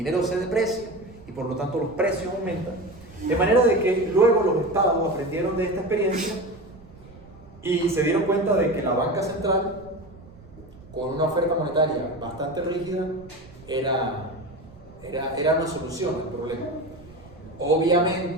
se deprecia y por lo tanto los precios aumentan. De manera de que luego los estados aprendieron de esta experiencia y se dieron cuenta de que la banca central, con una oferta monetaria bastante rígida, era una solución al problema.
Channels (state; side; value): noise; right; rumble, 21 dB below the sound